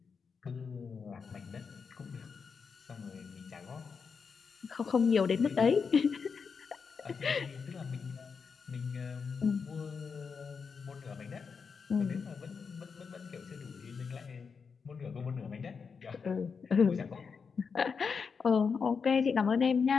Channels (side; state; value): right; quieter; 5.6 dB